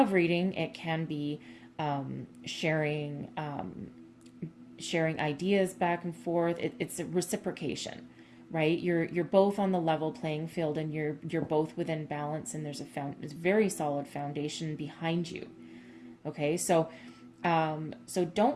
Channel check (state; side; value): identical; both; correlation 1.00